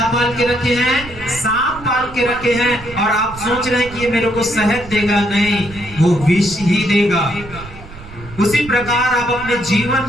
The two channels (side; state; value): right; noise; rumble, 16 dB below the sound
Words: पाल के रखे हैं? सांप पाल के रखे हैं और आप सोच रहे हैं कि ये मेरे को शहद देगा, नहीं, वो विष ही देगा। उसी प्रकार आप अपने जीवन